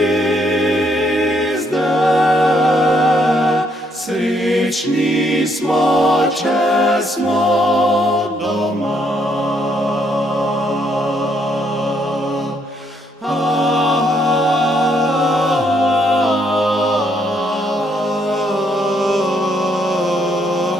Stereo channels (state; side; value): normal; both; correlation 0.72